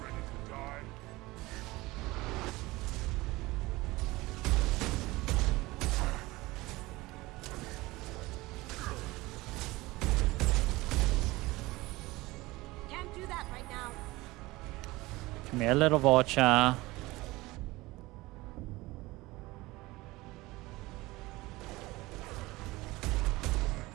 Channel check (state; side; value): quieter; left; 20.5 dB